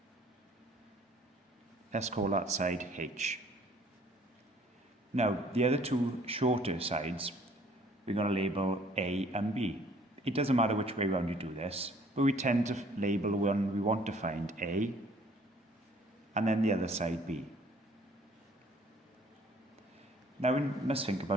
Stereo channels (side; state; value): both; normal; correlation 0.57